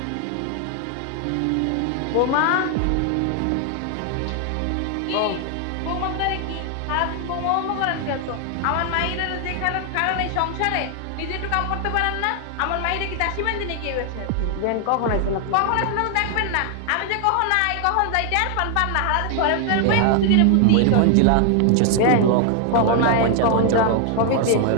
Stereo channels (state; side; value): different; both; correlation 0.00